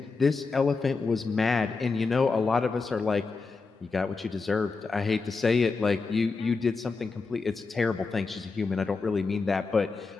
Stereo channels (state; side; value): quieter; right; 4.3 dB